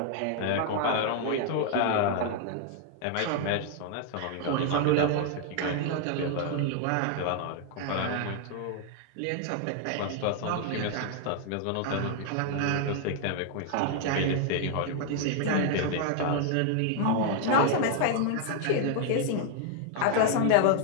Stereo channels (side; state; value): both; different; correlation 0.00